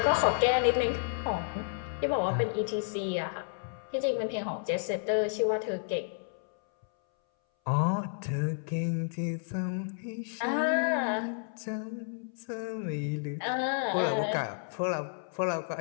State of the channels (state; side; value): silent; right; 57 dB below the other